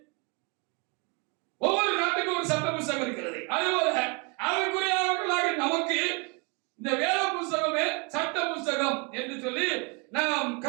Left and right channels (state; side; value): quieter; left; 32.1 dB